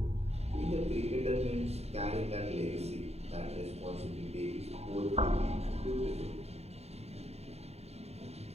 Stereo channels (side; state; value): left; late; 0.30 ms